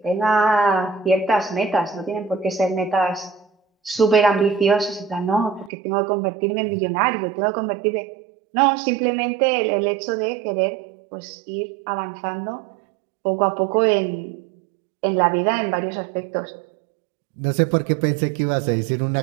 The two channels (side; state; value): left; drops out; at 5.7 s